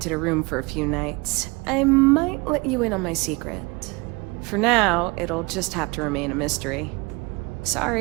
a room for a few nights, I might let you in on my secret. For now, it'll just have to remain a mystery.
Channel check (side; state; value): left; quieter; 26.0 dB